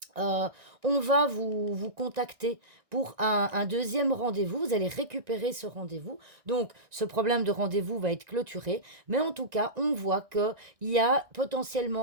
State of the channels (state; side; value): late; left; 1.6 ms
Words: euh, on va vous contacter pour un deuxième rendez-vous. Vous allez récupérer ce rendez-vous. Donc, ce problème de rendez-vous va être clôturé. Mais en tout cas, on voit qu'il y a